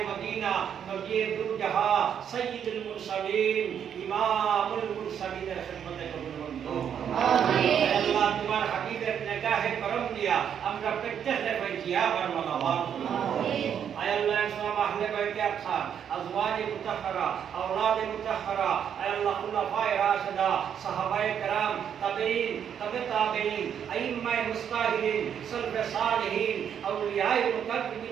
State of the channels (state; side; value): quieter; left; 8.5 dB